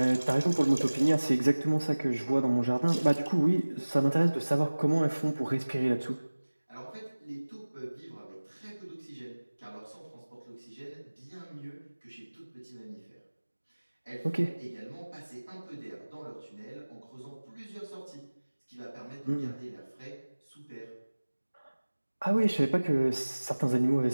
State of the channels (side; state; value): both; inverted; correlation -1.00